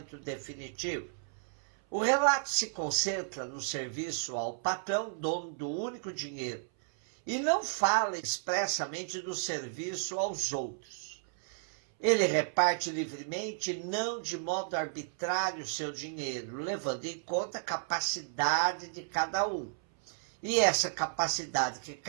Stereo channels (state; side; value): silent; left; 56 dB below the other